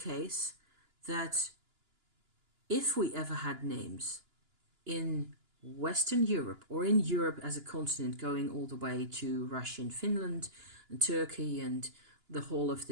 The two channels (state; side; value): late; left; 2.9 ms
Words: that if we ever had names in Western Europe, or in Europe as a continent, going all the way to Russia and Finland and Turkey and the whole of